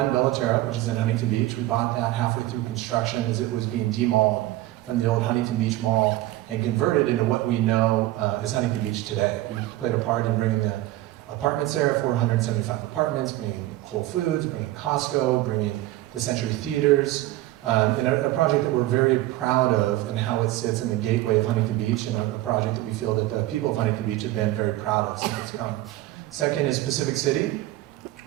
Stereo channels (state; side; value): quieter; left; 16.4 dB